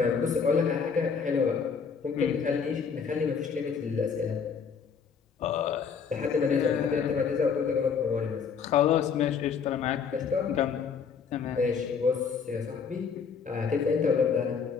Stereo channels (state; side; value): quieter; right; 6.1 dB